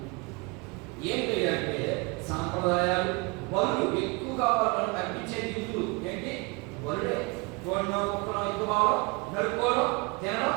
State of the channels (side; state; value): left; quieter; 28.0 dB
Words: ఏం చేయాలంటే సాంప్రదాయాలు, బరువు ఎక్కువగా వాళ్ళని తగ్గించే నిధులు ఏంటి? బరుడే. భావం నడుపుకోవడం, తినడం,